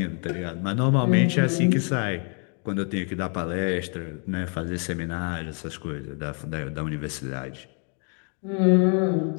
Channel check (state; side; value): quieter; right; 39.9 dB